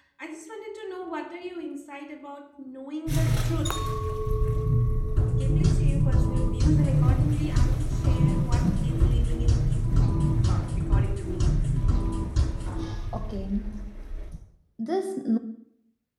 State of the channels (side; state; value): both; identical; correlation 1.00